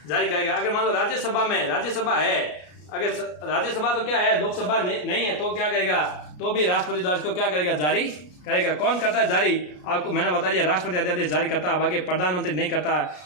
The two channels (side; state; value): right; late; 33 ms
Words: जारी करेगा। अगर मान लो राज्यसभा है, अगर राज्यसभा तो क्या है, लोकसभा नहीं है, तो क्या करेगा, तो भी राष्ट्रपति द्वारा इसको क्या करेगा, जारी करेगा। कौन करता है जारी, आपको मैंने बता दिया, राष्ट्रपति अध्यादेश जारी करता है, बाकी प्रधानमंत्री नहीं करता है।